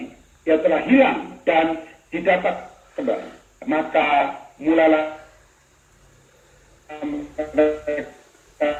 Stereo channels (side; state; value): both; identical; correlation 1.00